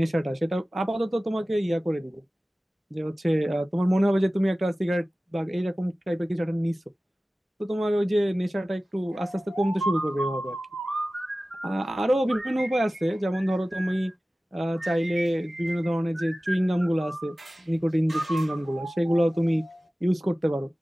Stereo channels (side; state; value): both; normal; correlation 0.97